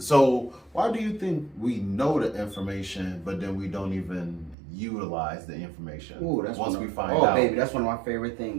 know the information, but then we don't even utilize the information? Ooh, that's once we find out. Oh, baby, that's one of my favorite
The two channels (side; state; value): left; drops out; at 4.5 s